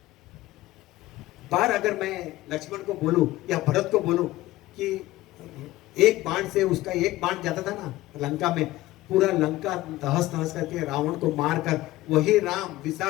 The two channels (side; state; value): right; quieter; 17.1 dB